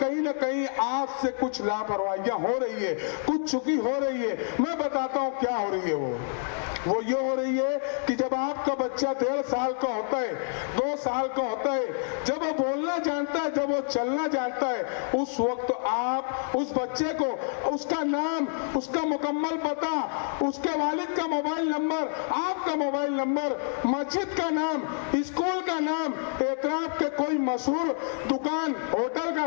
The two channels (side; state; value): right; silent; digital silence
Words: ना कहीं आपसे कुछ लापरवाहियां हो रही है, कुछ चुकी हो रही है। मैं बताता हूं क्या हो रही है। वो ये हो रही है कि जब आपका बच्चा 1.5 साल का होता है, 2 साल का होता है, जब वो बोलना जानता है, जब वो चलना जानता है, उस वक्त आप उस बच्चे को उसका नाम, उसका मुकम्मल पता, उसके वालिद का मोबाइल नंबर, आपका मोबाइल नंबर, मस्जिद का नाम, स्कूल का नाम, एतराफ के कोई मशहूर दुकान, होटल का